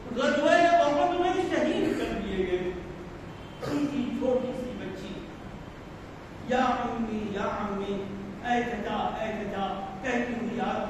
غزوہ احد میں شہید کر دیے گئے, ان کی چھوٹی سی بچی یا امی یا امی اے چچا کہتی ہوئی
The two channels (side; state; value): both; identical; correlation 1.00